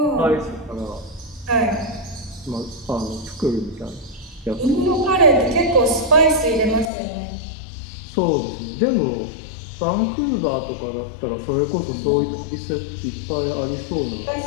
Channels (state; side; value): drops out; right; at 6.9 s